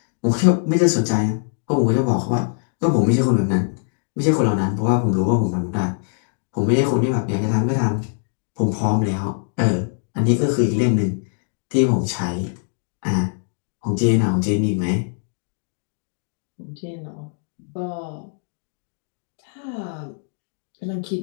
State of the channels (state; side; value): silent; right; 64 dB below the other